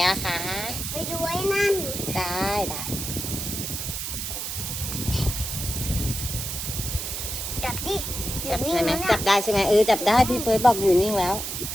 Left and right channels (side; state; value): right; noise; hiss, 4 dB below the sound